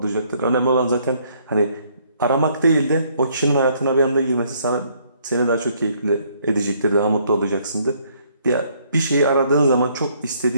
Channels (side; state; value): both; inverted; correlation -0.66